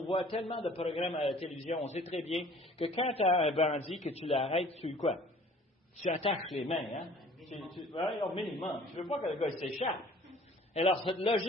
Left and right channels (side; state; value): both; normal; correlation 0.51